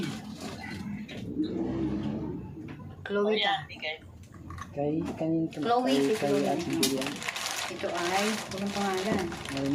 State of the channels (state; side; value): identical; both; correlation 1.00